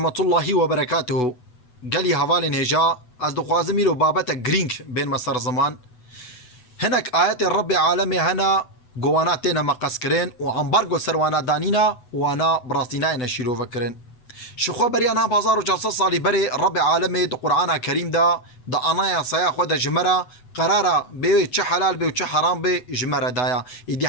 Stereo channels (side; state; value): right; late; 8.0 ms